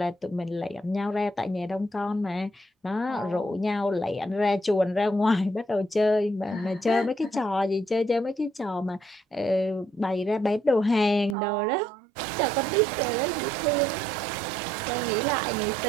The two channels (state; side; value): drops out; left; at 11.4 s